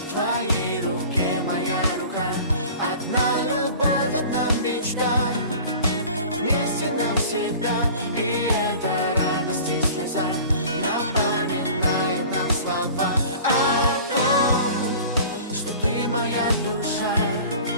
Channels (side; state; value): both; inverted; correlation -0.42